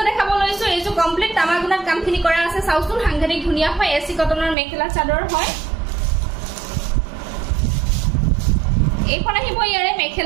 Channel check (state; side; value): drops out; left; at 4.5 s